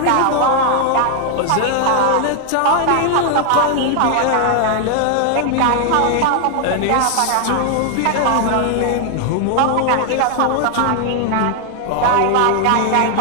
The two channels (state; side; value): different; both; correlation 0.00